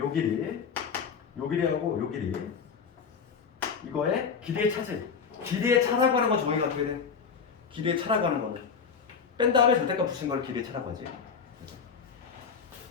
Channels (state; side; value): quieter; right; 6.1 dB